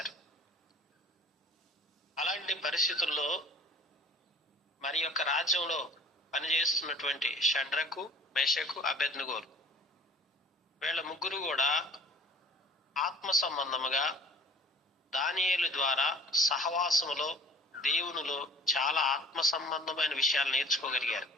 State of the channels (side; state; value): both; normal; correlation 0.49